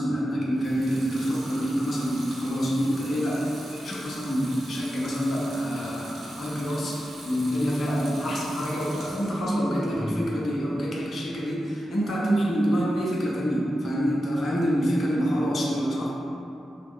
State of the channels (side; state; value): both; normal; correlation 0.91